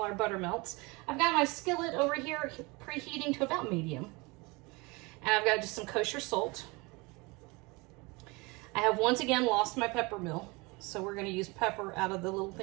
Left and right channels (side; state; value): left; quieter; 26.0 dB